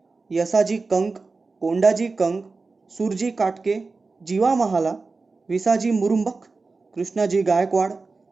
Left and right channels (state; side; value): quieter; left; 4.0 dB